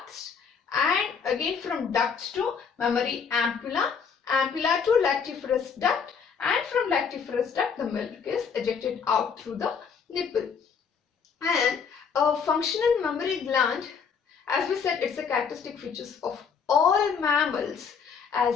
and again from ducts to mammary ampulla, ampulla to lactiferous duct, and from lactiferous duct the milk is ejected out through the nipple. And a functional mammary gland, as we said, it's a characteristic features of all mammals,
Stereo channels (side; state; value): right; quieter; 6.3 dB